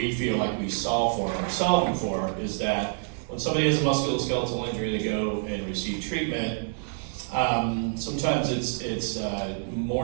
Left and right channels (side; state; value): left; silent; digital silence